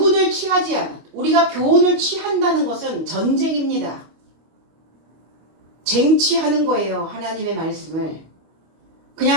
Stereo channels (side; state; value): left; late; 25 ms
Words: 취하지 않았다. 우리가 교훈을 취한다는 것은 전쟁입니다. 쟁취하는 거예요. 하나님의 말씀을.